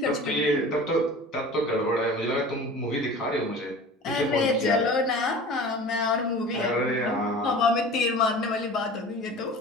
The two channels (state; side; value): normal; both; correlation 0.39